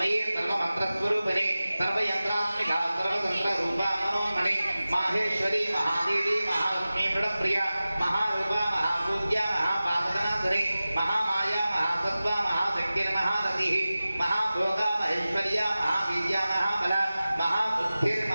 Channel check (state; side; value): inverted; both; correlation -0.96